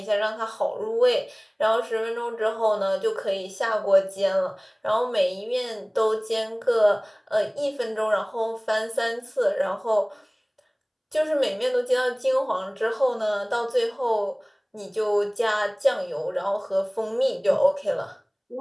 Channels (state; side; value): identical; both; correlation 1.00